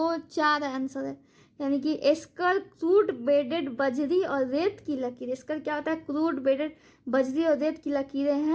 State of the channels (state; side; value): identical; both; correlation 1.00